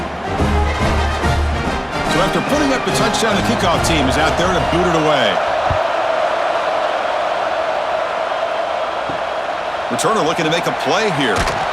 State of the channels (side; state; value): both; identical; correlation 1.00